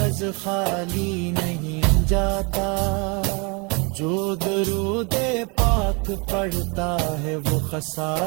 خالی نہیں جاتا، جو درود پاک پڑھتا ہے وہ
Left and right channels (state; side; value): quieter; left; 30.9 dB